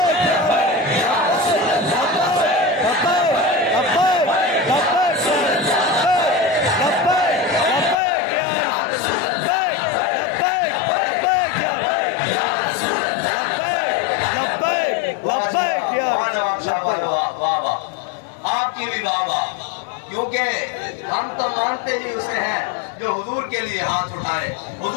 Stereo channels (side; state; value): right; drops out; at 8.0 s